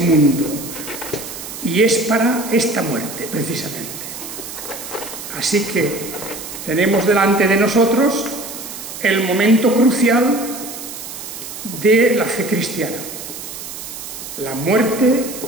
Y es para esta muerte, precisamente. Así que tenemos delante de nosotros el momento crucial de la fe cristiana. La muerte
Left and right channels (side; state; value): right; noise; hiss, 10 dB below the sound